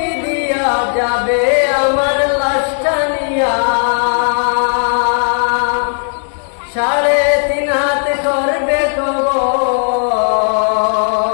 দিয়া যাবে আমার লাশটা নিয়া। 3.5 হাত করবে কবর,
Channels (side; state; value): right; silent; digital silence